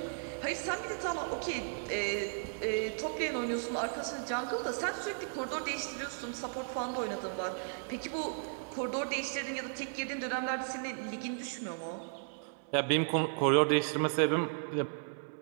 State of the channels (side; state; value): left; silent; 54 dB below the other